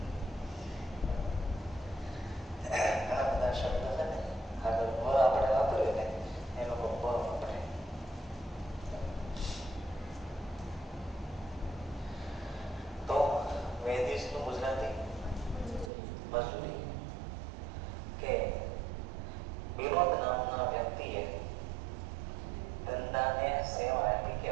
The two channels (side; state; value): left; drops out; at 15.9 s